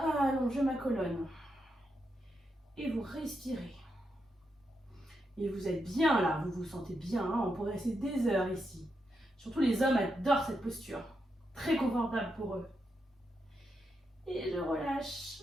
ma colonne. Et vous respirez. Et vous êtes bien là, vous vous sentez bien, hein, on pourrait rester des heures ici. Surtout les hommes adorent cette posture, très confortable pour eux. Et je relâche,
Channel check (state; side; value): normal; both; correlation 0.83